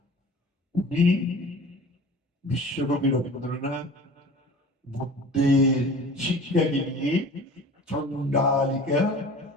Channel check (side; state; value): both; normal; correlation 0.41